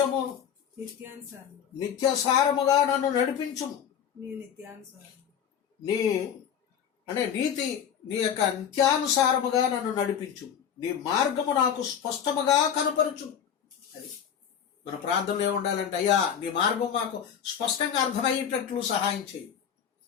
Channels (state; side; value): quieter; right; 8.4 dB